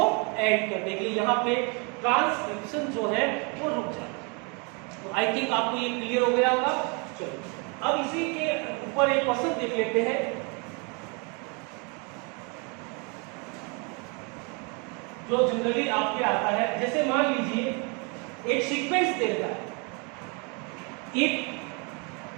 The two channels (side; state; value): left; quieter; 33.2 dB